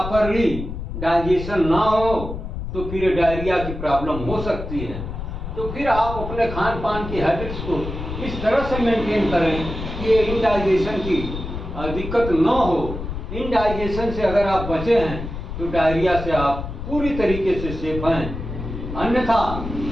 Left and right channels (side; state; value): left; noise; rumble, 7 dB below the sound